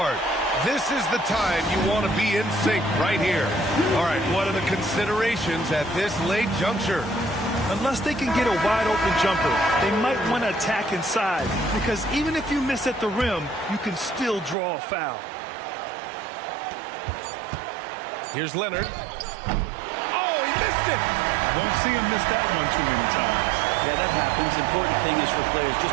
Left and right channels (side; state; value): left; drops out; at 14.6 s